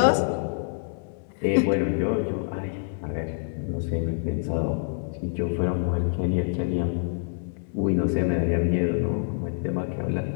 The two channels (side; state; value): right; silent; digital silence